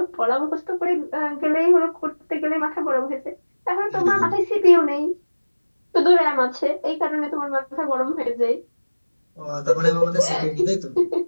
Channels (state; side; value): inverted; both; correlation -1.00